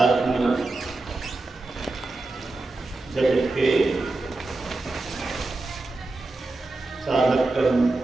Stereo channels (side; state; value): left; quieter; 3.2 dB